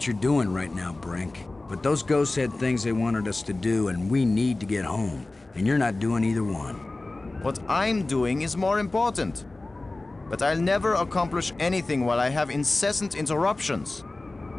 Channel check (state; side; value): quieter; right; 3.0 dB